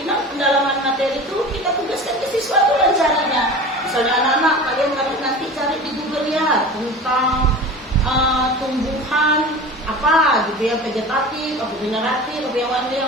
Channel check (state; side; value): normal; both; correlation 0.35